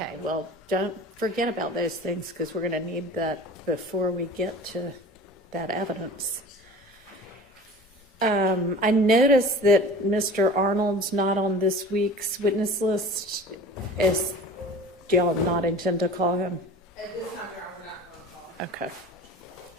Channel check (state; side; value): normal; both; correlation 0.40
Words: well, don't forget about those things because we're going to need that before we get to that evidence. I noticed that Mr. Arnold's not on this week's witness list. Do y'all not intend to call him? At this time, we're not going to call. Okay.